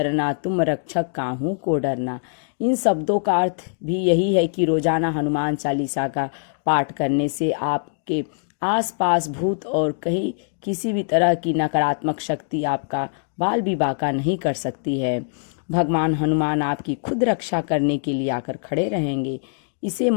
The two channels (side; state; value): right; silent; digital silence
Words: तुम रक्षक काहू को डरना। इन शब्दों का अर्थ भी यही है कि रोजाना हनुमान चालीसा का पाठ करने से आपके आसपास भूत और कहीं किसी भी तरह की नकारात्मक शक्ति आपका बाल भी बाका नहीं कर सकती है। भगवान हनुमान आपकी खुद रक्षा करने के लिए आकर खड़े रहेंगे। इसे